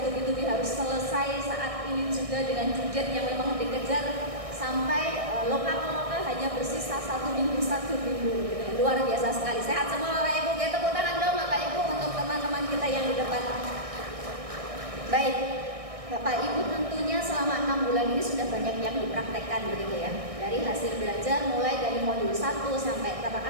harus selesai saat ini juga dengan target yang memang dikejar sampai lokal hanya bersisa 1 minggu gitu. Luar biasa sekali. Sehat semua Bapak Ibu, ya tepuk tangan dong Bapak Ibu untuk teman-teman kita yang di depan. Baik, Bapak Ibu tentunya selama 6 bulan ini sudah banyak yang dipraktekkan begitu ya. Dari hasil belajar mulai dari modul 1 sampai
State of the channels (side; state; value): left; late; 1.6 ms